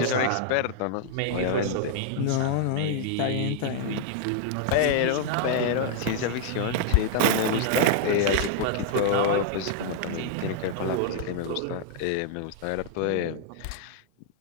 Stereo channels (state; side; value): different; both; correlation -0.01